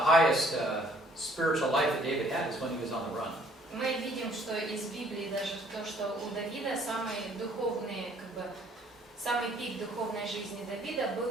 spiritual life that David had is when he was on the run. мы видим, что из Библии даже то, что у Давида самые духовные, самый пик духовной жизни Давида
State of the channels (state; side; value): normal; both; correlation 0.61